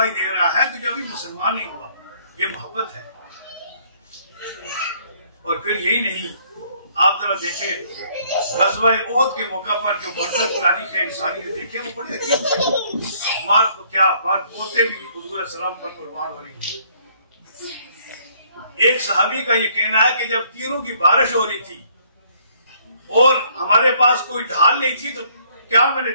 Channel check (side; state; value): both; inverted; correlation -0.64